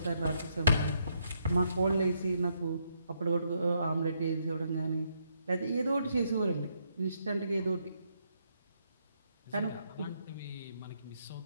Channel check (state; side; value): inverted; both; correlation -0.75